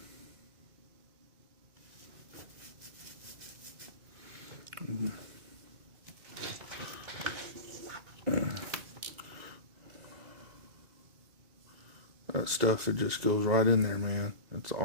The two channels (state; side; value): late; left; 1.9 ms